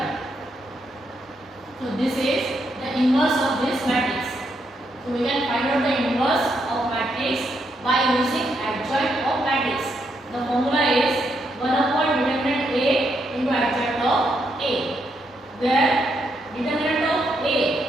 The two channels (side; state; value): both; normal; correlation 0.79